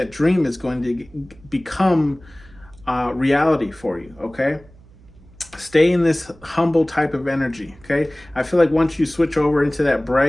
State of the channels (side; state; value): right; noise; hum, 25 dB below the sound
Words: dream is going to become reality for you. Okay. Stay in this humble type of energy, okay? I feel like once you switch over into that